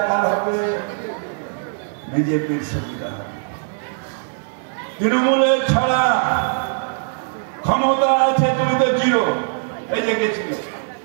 কার হবে? বিজেপির সুবিধা হবে। তৃণমূলের ছাড়া ক্ষমতা আছে, তুমি তো জিরো। এই যে গেছিল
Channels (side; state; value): left; silent; 57 dB below the other